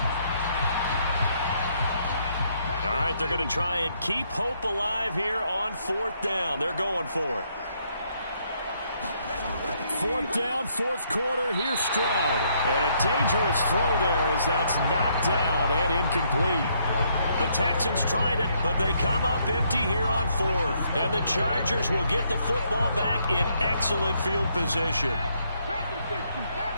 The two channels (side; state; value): both; inverted; correlation -0.72